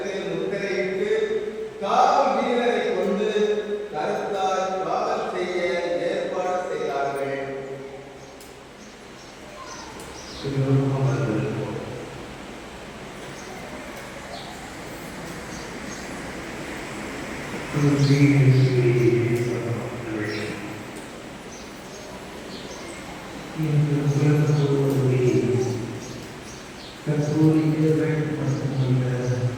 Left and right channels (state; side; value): identical; both; correlation 1.00